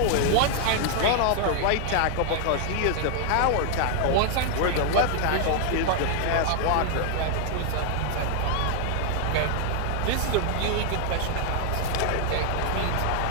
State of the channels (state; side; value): different; both; correlation 0.00